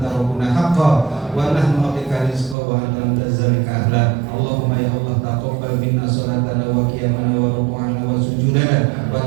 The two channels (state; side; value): drops out; left; at 2.6 s